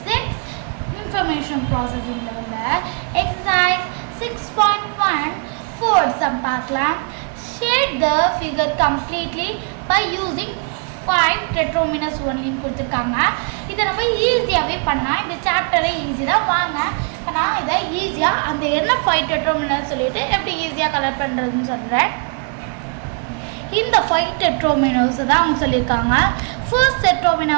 6 Information Processing ல உள்ள Exercise 6.1 Fourth sum பார்க்கலாம். Shade the figure completely by using 5 tetrominus only கொடுத்திருக்காங்க. இதை நம்ம ஈஸியாகவே பண்ணலாம். இந்த சாப்டரை ஈஸி தான். வாங்க இப்போ நான் இதை ஈஸியாக அந்த என்ன 5 டெட்ரோமினஸ் சொல்லிட்டு எப்படி ஈஸியாக கலர் பண்ணுறதுன்னு சொல்கிறேன். இந்த 5 டெட்ரோமினஸ் தான் அவங்க சொல்லியிருக்காங்க. ஃபர்ஸ்ட் டெட்ரோமினா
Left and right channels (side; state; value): left; quieter; 39.2 dB